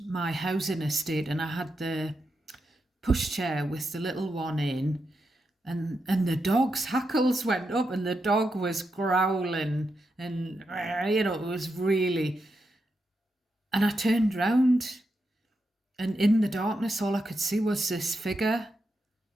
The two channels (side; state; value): both; normal; correlation 0.85